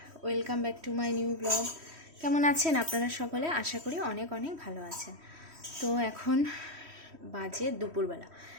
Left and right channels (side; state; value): left; late; 3.1 ms